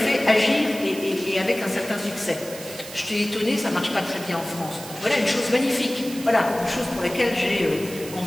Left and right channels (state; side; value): noise; right; hiss, 13 dB below the sound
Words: agir et avec un certain succès. Je t'ai étonné, ça ne marche pas très bien en France. Voilà une chose magnifique, voilà une chose pour laquelle j'ai